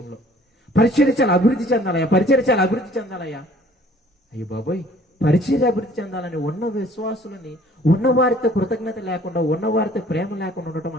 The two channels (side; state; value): both; normal; correlation 0.55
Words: పరిచర్య చాలా అభివృద్ధి చెందాలయ్యా. అయ్యో బాబోయ్, పరిచర్య అభివృద్ధి చెందాలని ఉన్న విశ్వాసులని, ఉన్నవారితో కృతజ్ఞత లేకుండా, ఉన్నవారితో ప్రేమ లేకుండా